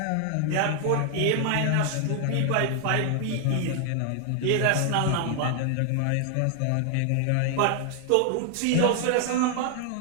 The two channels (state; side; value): different; both; correlation 0.00